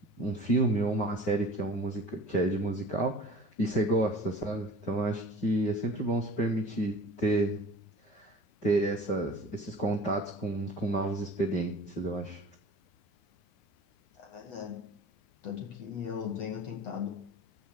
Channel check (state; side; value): late; right; 9.6 ms